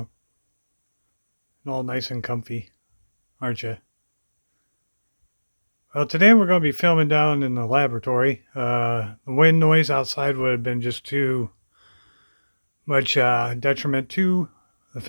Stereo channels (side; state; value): both; inverted; correlation -1.00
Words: All nice and comfy, aren't you? Well, today we're going to be filming down in the laboratory. The wind noise outside would have been just too much detriment to the